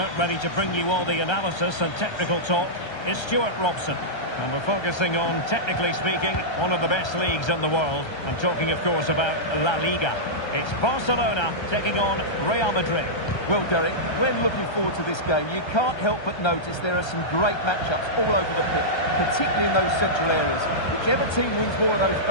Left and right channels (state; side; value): late; right; 1.3 ms